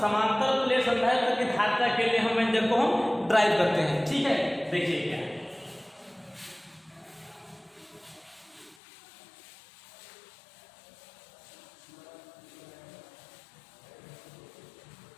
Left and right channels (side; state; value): right; drops out; at 8.8 s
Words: प्लेट संधारित्र की धारिता के लिए हम व्यंजक को हम ड्राइव करते हैं, ठीक है। देखिए क्या है,